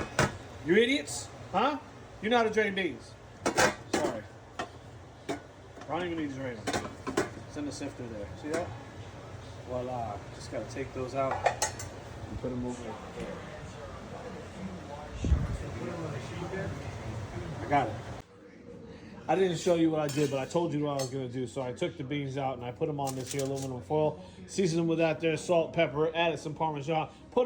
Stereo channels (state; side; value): identical; both; correlation 1.00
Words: You idiots? Huh? You know how to drain beans. Sorry. I don't even need to drain them. It's in the sifter there. See that? Voila. Just gotta take those out and put them over there. I got it. I didn't show you what I did, but I told you what I was going to do. So I took the beans out and I put them on this here aluminum foil, seasoned them with that there salt, pepper, added some Parmesan, put